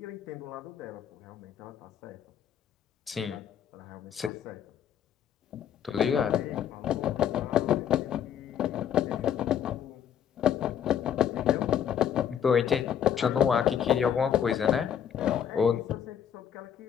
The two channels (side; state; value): right; quieter; 9.0 dB